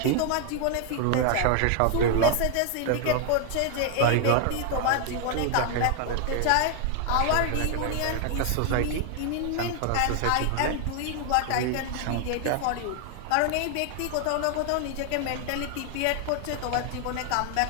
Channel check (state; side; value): different; both; correlation 0.00